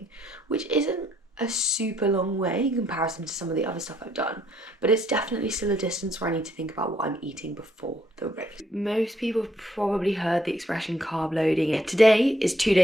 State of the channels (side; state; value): both; normal; correlation 0.69